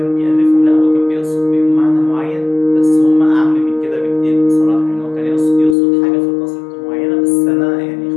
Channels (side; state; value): right; drops out; at 5.8 s